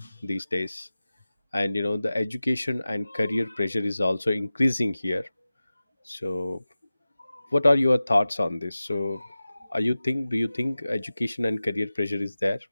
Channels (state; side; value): inverted; both; correlation -0.96